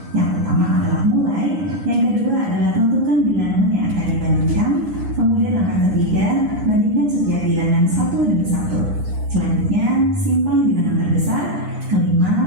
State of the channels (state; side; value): late; left; 9.8 ms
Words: Yang pertama adalah mulai, yang kedua adalah tentukan bilangan yang akan dibandingkan, kemudian langkah ketiga, bandingkan setiap bilangan satu demi satu. Selanjutnya, simpan bilangan terbesar,